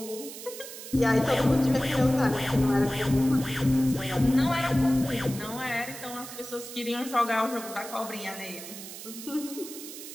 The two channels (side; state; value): right; noise; hiss, 12 dB below the sound